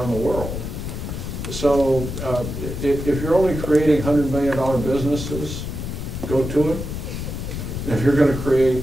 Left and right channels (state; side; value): noise; left; rumble, 6 dB below the sound